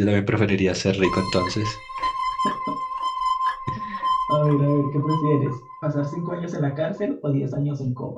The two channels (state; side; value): identical; both; correlation 1.00